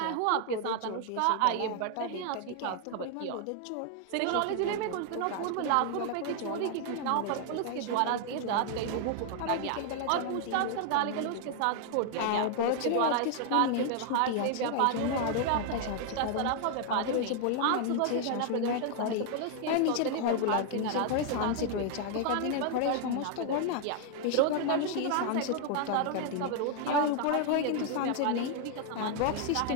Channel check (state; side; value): different; both; correlation 0.00